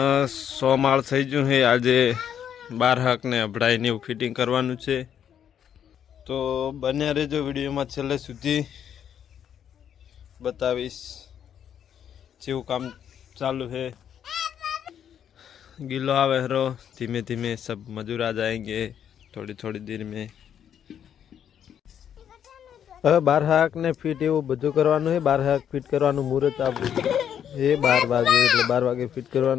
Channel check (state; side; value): quieter; right; 9.1 dB